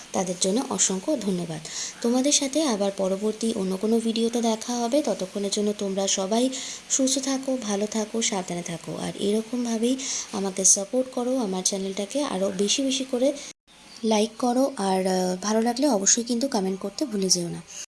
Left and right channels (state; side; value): identical; both; correlation 1.00